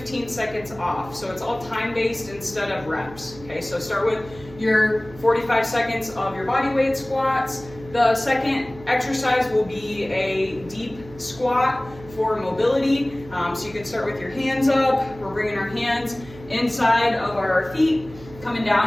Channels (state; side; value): noise; right; hum, 18 dB below the sound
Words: seconds off. So it's all time-based instead of reps. Okay, so start with your 45 seconds of your body weight squats. The second exercise will be a deep squat for mobility. So you can start with your hands up. We're bringing our hands inside of our feet, coming